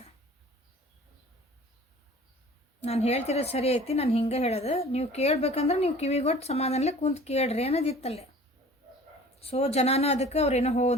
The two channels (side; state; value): both; normal; correlation 0.46